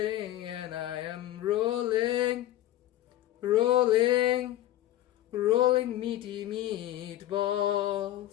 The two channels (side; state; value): right; quieter; 14.1 dB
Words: and I am rolling meaty